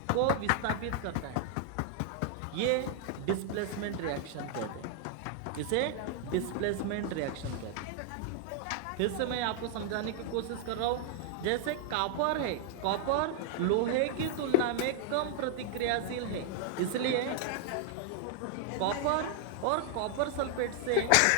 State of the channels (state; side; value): different; both; correlation 0.00